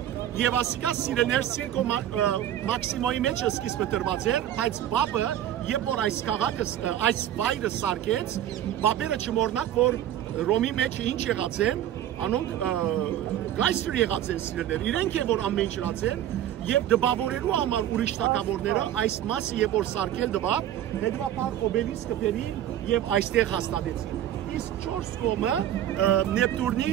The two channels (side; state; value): left; quieter; 11.5 dB